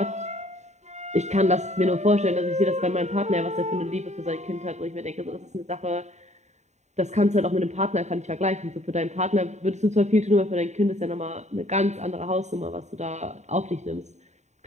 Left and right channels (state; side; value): late; left; 0.33 ms